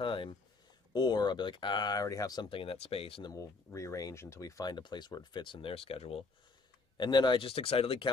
Or I'll be like, I already have something in that space, and then we'll rearrange until we find a place where it fits in their schedule. And then I just excitedly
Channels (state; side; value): quieter; right; 3.9 dB